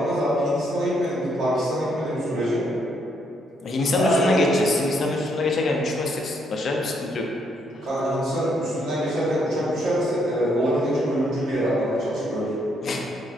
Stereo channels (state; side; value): normal; both; correlation 0.73